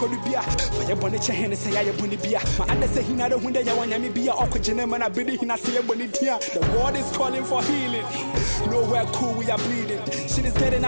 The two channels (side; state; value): both; inverted; correlation -1.00